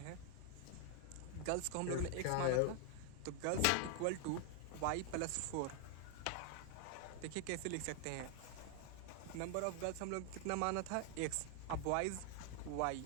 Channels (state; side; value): different; both; correlation 0.00